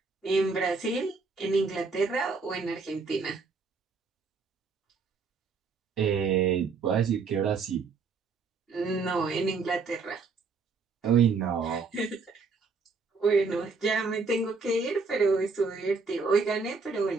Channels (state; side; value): quieter; left; 4.6 dB